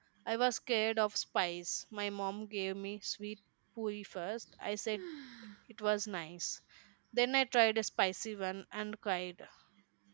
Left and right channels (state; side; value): silent; left; digital silence